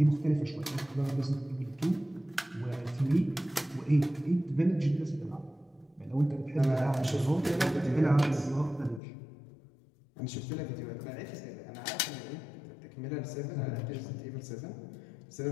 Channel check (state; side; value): drops out; right; at 9.0 s